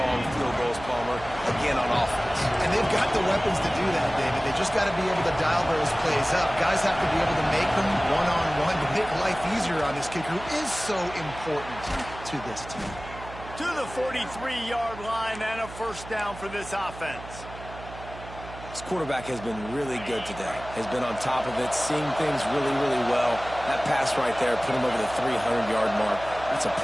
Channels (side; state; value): right; noise; hum, 14 dB below the sound